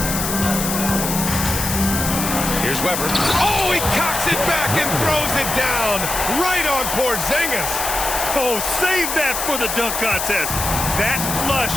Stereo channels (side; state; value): left; noise; hiss, 3 dB below the sound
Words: Here's Weber. Oh, he cocks it back and throws it down right on Porzingis. Oh, save that for the dunk contest. That flush